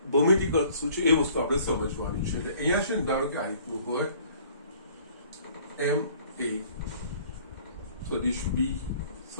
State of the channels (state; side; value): inverted; both; correlation -0.55